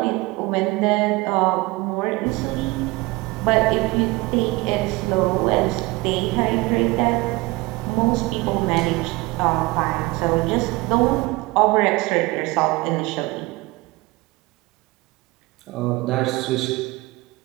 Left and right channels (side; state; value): left; quieter; 21.9 dB